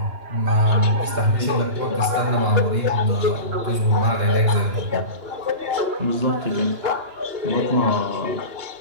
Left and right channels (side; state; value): left; late; 2.9 ms